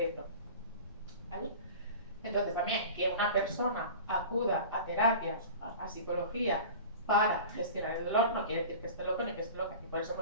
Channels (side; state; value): both; inverted; correlation -0.37